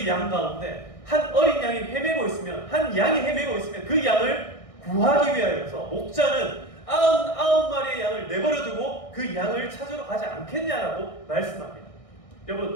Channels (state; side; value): late; right; 1.6 ms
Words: 양 가운데 한 어린 양이 헤매고 있으면, 한 양이 헤매고 있으면 그 양을 구하기 위하여서 목자는 99마리의 양을 내버려두고 그 양을 찾으러 가지 않겠냐라고 말씀합니다.